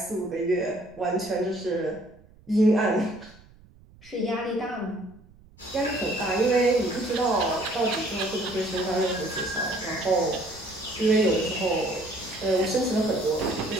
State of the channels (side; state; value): right; noise; rumble, 25 dB below the sound